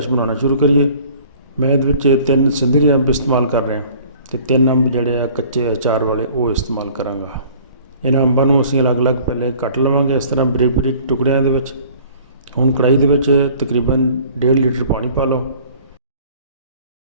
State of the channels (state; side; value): inverted; both; correlation -0.51